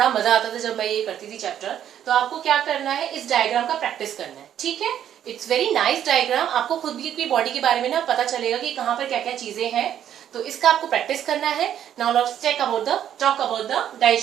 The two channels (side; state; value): left; quieter; 10.2 dB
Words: मजा आता था जब मैं ये करती थी चैप्टर. तो आपको क्या करना है, इस डायग्राम का प्रैक्टिस करना है, ठीक है? It's very nice diagram. आपको खुद भी अपनी बॉडी के बारे में ना पता चलेगा कि कहाँ पर क्या क्या चीजें हैं. तो इसका आपको प्रैक्टिस करना है. Now let's talk about the